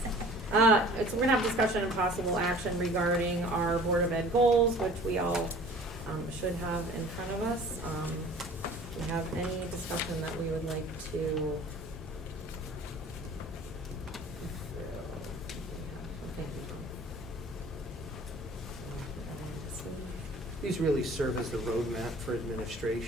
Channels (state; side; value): normal; both; correlation 0.47